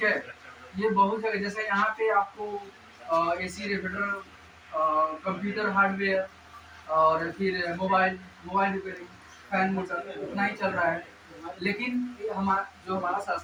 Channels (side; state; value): both; identical; correlation 1.00